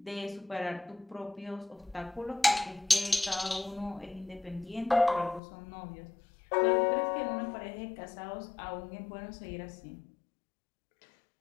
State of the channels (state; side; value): drops out; right; at 5.4 s